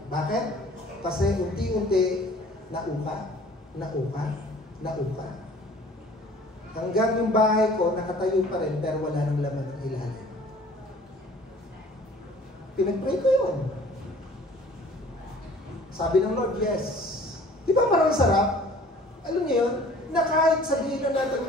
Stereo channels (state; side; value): normal; both; correlation 0.50